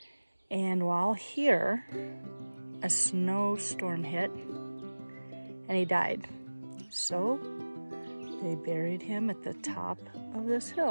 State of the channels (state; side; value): inverted; both; correlation -1.00